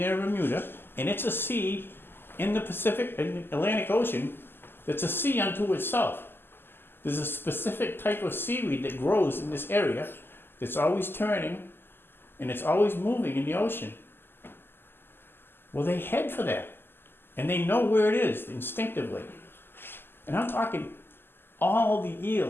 and Bermuda, and it's a sea in the Atlantic Ocean that's a sea unto itself. There's a specific type of seaweed that grows in this area that's always turning, and it's always moving in the ocean. Well, they head for that, and they know where it is instinctively. And I'm talking all the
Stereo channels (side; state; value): right; late; 0.10 ms